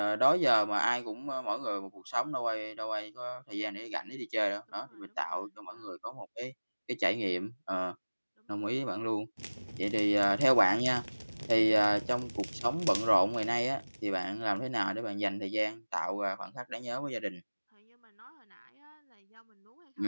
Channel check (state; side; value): inverted; both; correlation -1.00